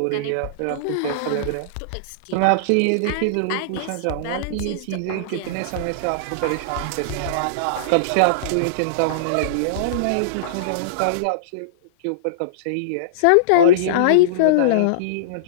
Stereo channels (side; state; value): both; different; correlation -0.03